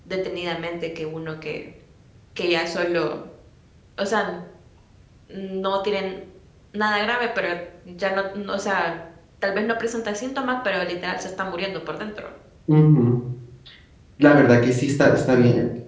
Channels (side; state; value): both; identical; correlation 1.00